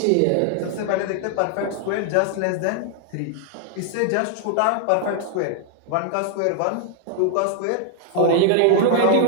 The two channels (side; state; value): both; different; correlation 0.00